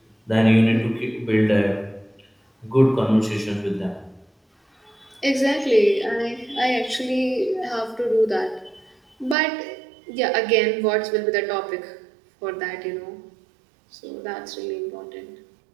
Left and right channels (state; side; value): drops out; left; at 9.3 s